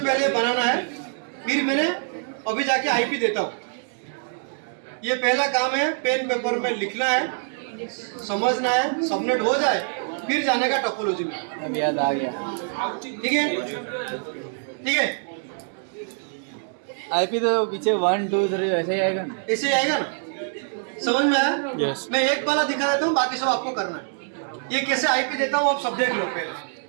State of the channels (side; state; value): left; silent; 62 dB below the other